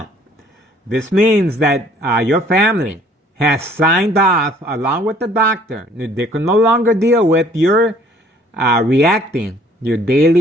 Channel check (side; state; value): both; normal; correlation 0.58